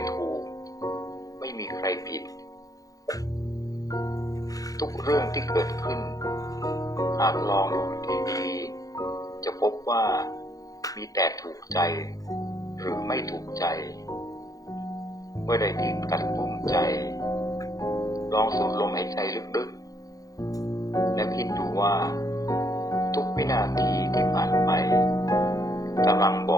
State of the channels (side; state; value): right; late; 0.17 ms